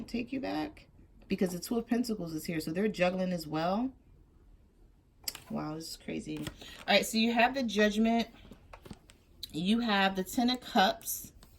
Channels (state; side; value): identical; both; correlation 1.00